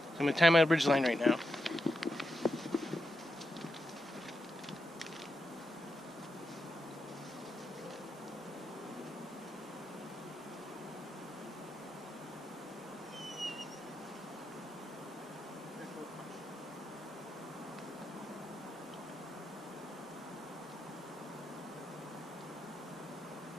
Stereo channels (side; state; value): both; normal; correlation 0.85